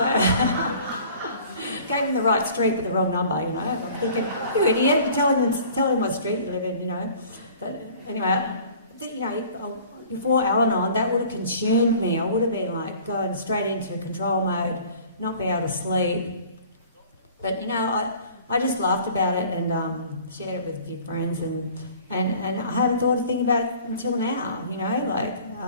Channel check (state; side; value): inverted; both; correlation -0.49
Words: gave him the right street with the wrong number, you know. I'm thinking, you idiot, tell him what street you live in, you know. But anyway, you know, before Al-Anon, that would have consumed me. I would have been like going straight into control mode, not be able to sleep. But you know, I just laughed about it and shared it with a few friends, and I hadn't thought a thing about it until now. You know, like